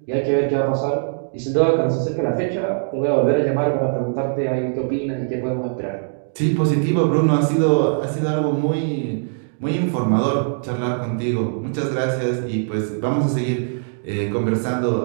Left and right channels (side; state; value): left; silent; digital silence